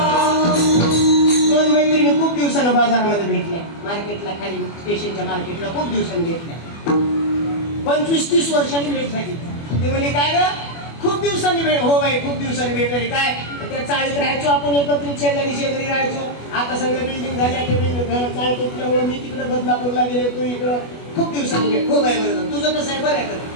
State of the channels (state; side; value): late; right; 24 ms